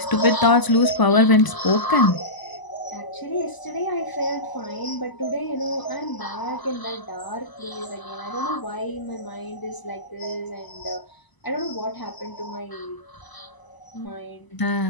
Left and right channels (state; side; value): late; right; 1.0 ms